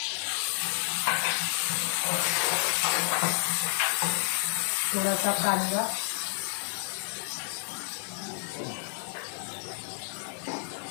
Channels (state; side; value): silent; right; 58 dB below the other